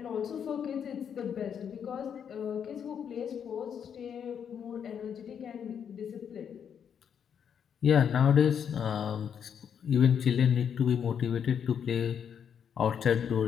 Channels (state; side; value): quieter; right; 7.9 dB